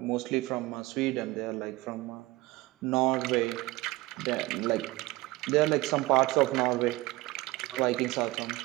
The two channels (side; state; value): left; quieter; 20.1 dB